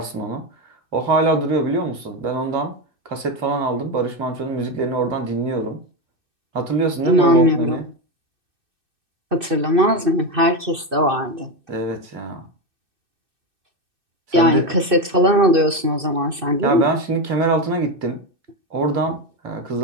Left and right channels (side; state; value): left; late; 2.6 ms